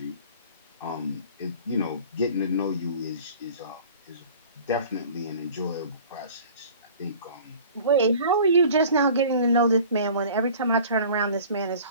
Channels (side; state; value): both; inverted; correlation -0.45